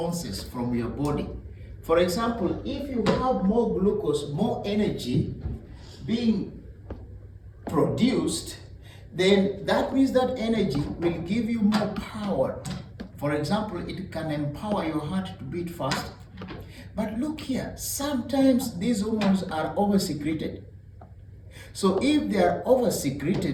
from your body. For example, if you have more glucose, more energy being produced, then that means that energy will give you more power. For example, it can empower your heart to beat fast. But look here, sometimes these hormones are over-secreted. So if they are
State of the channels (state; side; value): identical; both; correlation 1.00